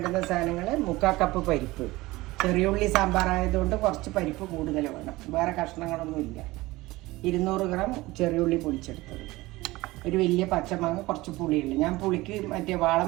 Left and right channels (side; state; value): left; quieter; 19.8 dB